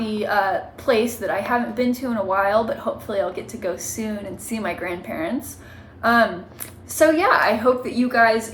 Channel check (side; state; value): both; identical; correlation 1.00